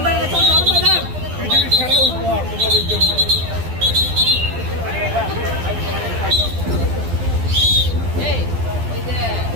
পৃথিবীর সেরা উপহার তোমাদের জন্য।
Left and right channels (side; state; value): left; late; 12 ms